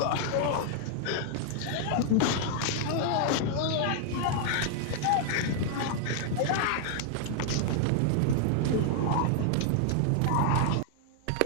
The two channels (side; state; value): both; different; correlation 0.00